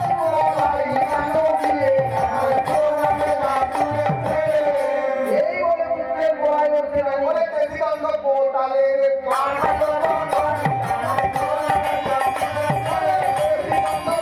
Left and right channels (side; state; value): both; identical; correlation 1.00